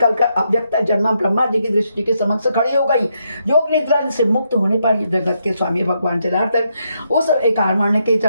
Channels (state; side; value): inverted; both; correlation -0.79